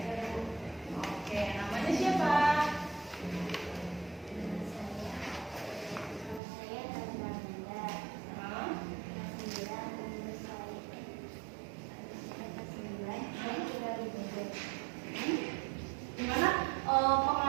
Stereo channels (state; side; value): drops out; left; at 6.4 s